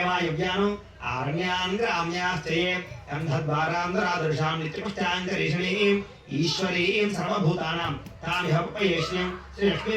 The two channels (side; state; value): both; identical; correlation 1.00